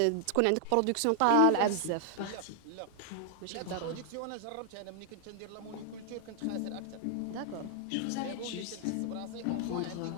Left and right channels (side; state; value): both; different; correlation 0.00